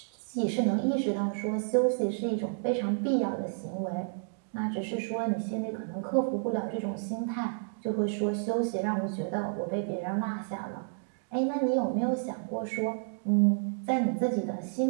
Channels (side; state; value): left; silent; digital silence